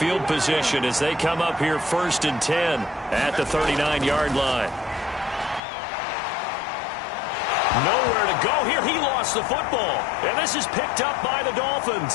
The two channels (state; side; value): drops out; right; at 5.6 s